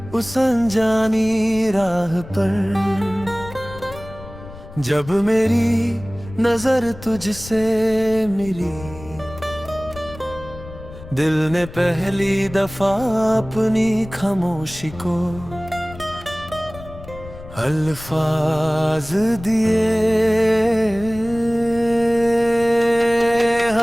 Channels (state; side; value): noise; left; rumble, 16 dB below the sound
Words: उस अनजानी राह पर जब मेरी नजर तुझसे मिली, दिल ने पहली दफा अपनी खामोशी को अल्फाज दिए।